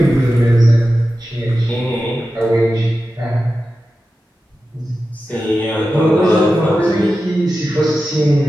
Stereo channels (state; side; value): normal; both; correlation 0.93